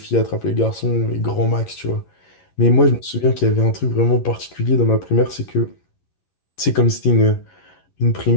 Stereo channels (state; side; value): late; right; 11 ms